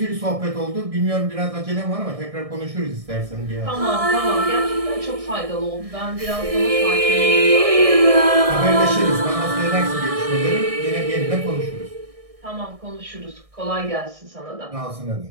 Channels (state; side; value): late; left; 1.6 ms